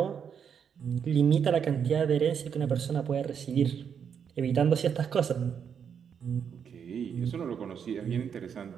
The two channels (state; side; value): quieter; left; 7.5 dB